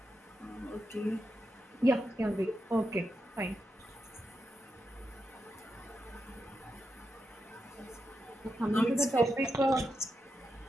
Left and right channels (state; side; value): normal; both; correlation 0.86